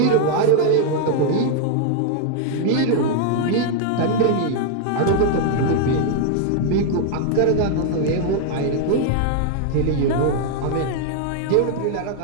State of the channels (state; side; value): different; both; correlation 0.00